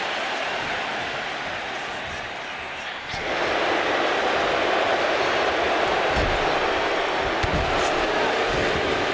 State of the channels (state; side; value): identical; both; correlation 1.00